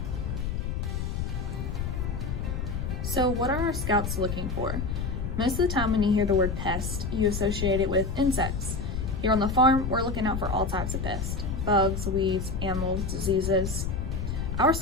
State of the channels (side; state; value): left; noise; rumble, 3 dB below the sound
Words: So what are our scouts looking for? Most of the time when you hear the word pest, you associate it with insects. Here on the farm, we're looking out for all types of pests: bugs, weeds, animals, diseases. Our